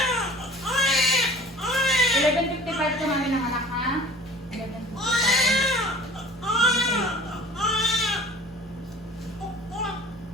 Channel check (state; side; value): normal; both; correlation 0.44